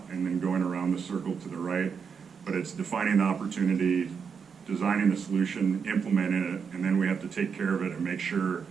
and then going around the circle to the right. But it's defining the opportunity, designing the solution, implementing it, and then we have to take care of it and make sure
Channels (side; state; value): left; quieter; 6.3 dB